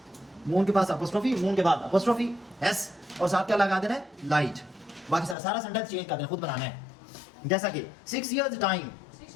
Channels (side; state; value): right; drops out; at 5.4 s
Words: मून के पास अपोस्ट्रोफी, मून के बाद अपोस्ट्रोफी एस और साथ क्या लगा देना है, लाइट। बाकी सारा सेंटेंस चेंज कर देना, खुद बनाना है। जैसा कि 6 years टाइम,